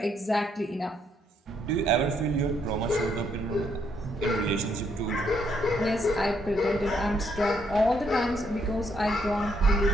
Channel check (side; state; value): both; normal; correlation 0.73